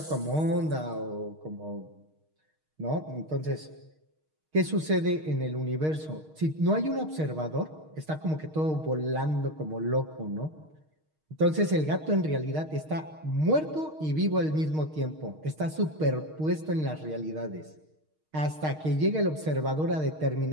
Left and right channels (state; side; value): late; left; 6.4 ms